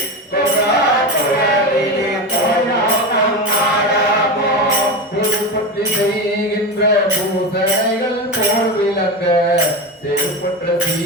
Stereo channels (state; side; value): normal; both; correlation 0.21